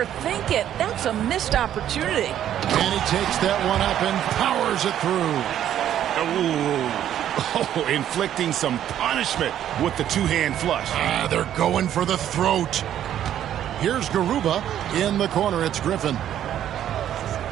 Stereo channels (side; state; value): left; quieter; 10.9 dB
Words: it? That's a missed opportunity. And he takes that one up and powers it through. Oh, inflicting some punishment with the 2-hand flush. They're going for the throat. Here's Garuba. In the corner, it's Griffin.